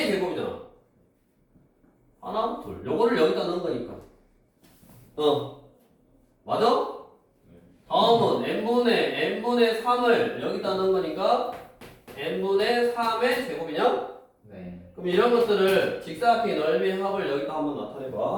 제곱이잖아. 하나, 둘. 요거를 여기다 넣은 거니까. 맞아? 다음은 n분의 3을 여기다 넣은 거니까 n분의 3의 제곱이냐? 네. 그럼 이런 것들을 직사각형의 넓이 합을 여기다 한번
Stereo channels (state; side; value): identical; both; correlation 1.00